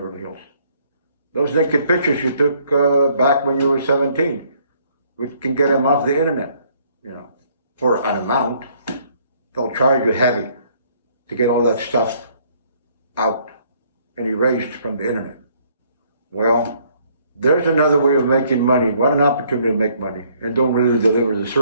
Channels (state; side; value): inverted; both; correlation -0.64